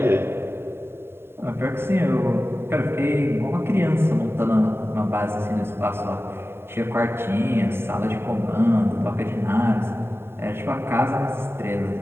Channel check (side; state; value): left; late; 0.11 ms